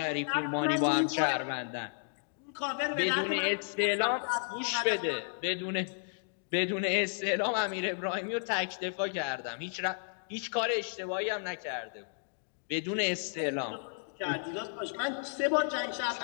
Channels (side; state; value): right; silent; digital silence